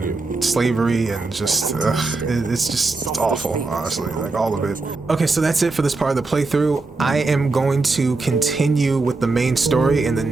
slavery and just it's awful, honestly, like all of it. Okay, so that's it for this part of the playthrough. I am going to continue with the main story in the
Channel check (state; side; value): quieter; left; 3.6 dB